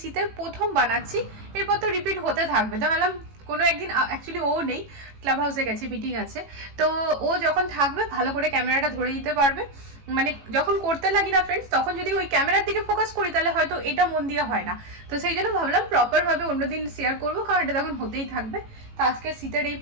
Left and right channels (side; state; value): left; late; 18 ms